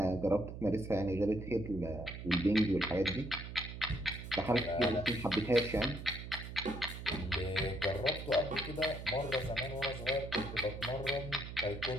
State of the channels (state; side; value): noise; right; hum, 9 dB below the sound